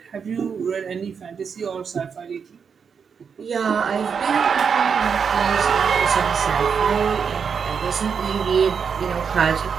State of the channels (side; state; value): left; quieter; 6.4 dB